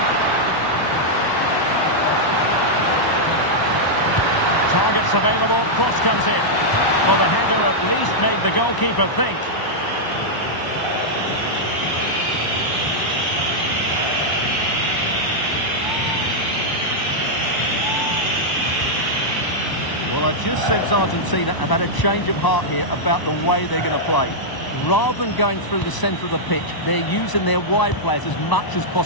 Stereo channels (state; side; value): late; right; 1.0 ms